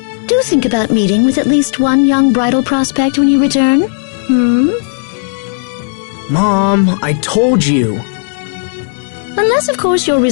do think about meeting with at least one young bridal prospect when you return. Mom, I told you. Unless, of course, your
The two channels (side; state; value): right; silent; digital silence